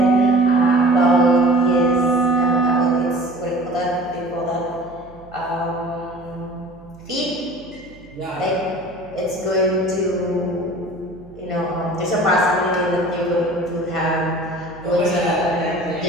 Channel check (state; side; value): noise; right; hum, 24 dB below the sound